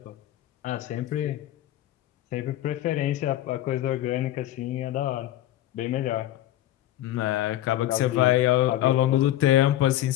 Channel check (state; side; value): quieter; right; 13.7 dB